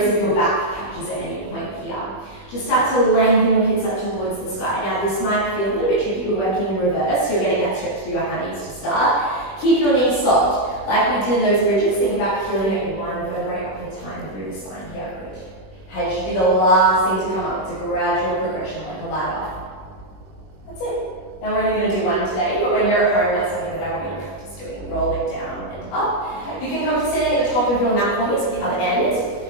if your back catches at any point here. Just start to lengthen your hips up up towards the sky. Now this might feel a little bit tricky, we're working in reverse, so you're getting that stretch through your hammies to start. Keep your knees soft, like we did in those bridges. Think about healing at one vertebrae up at a time through the spine here. Good. Head should be the last thing to come up. It's a gradual progression, like a ladder. That's it. Now we're only going to do one today, but when you're at home, that's something that I want you to practice doing. Roll it down and up. You can come to standing at the top of your mat for me, so the other end.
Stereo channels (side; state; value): right; late; 21 ms